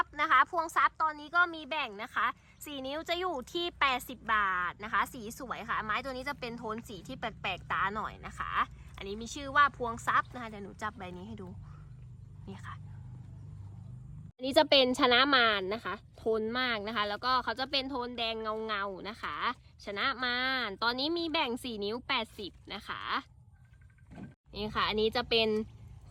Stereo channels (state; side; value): identical; both; correlation 1.00